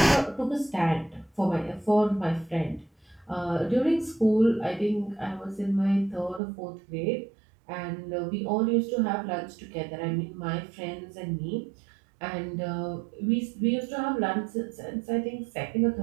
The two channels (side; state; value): left; drops out; at 6.4 s